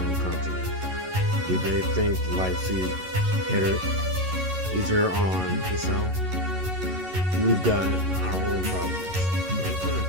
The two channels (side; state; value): left; late; 11 ms